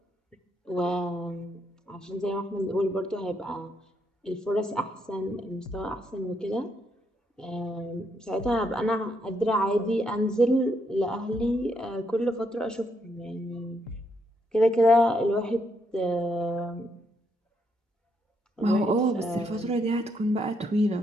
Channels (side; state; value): both; normal; correlation 0.76